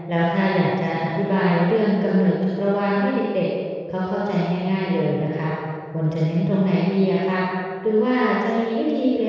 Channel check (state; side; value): identical; both; correlation 1.00